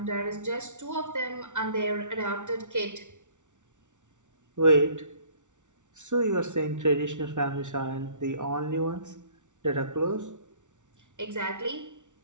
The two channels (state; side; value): late; left; 0.86 ms